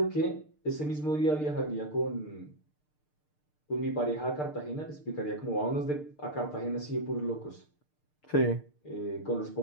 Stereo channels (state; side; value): late; right; 6.6 ms